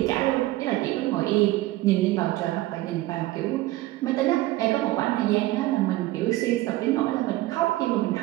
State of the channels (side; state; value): left; quieter; 17.5 dB